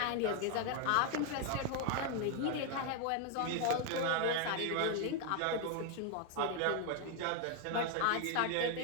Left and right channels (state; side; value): different; both; correlation 0.00